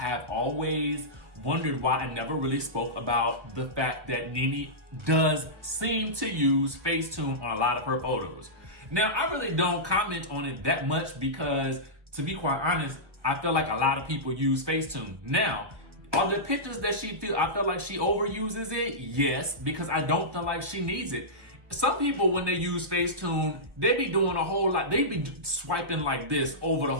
always wondered why I never really spoke about the fact that Nene does seem to use Facetune on a lot of her photos. Now, I really don't comment on it that much because, to be quite honest, I feel like a lot of people use Facetune. Now, are the pictures that I feel like she overuses it? Yes, because I don't feel like she needs it. Some people, when they use Facetune, they be doing a whole lot. They be swiping like this over the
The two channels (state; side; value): late; left; 1.2 ms